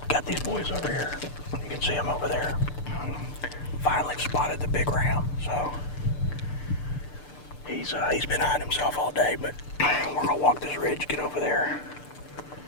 Got these boys over here. You can see them over there. Finally spotted the big ram, so he's been hiding himself all day, but we're gonna walk this ridge, get over there,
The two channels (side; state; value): right; late; 6.8 ms